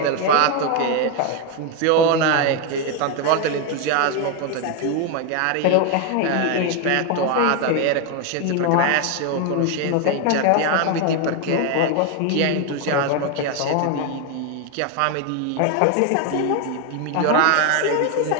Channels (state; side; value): different; both; correlation 0.01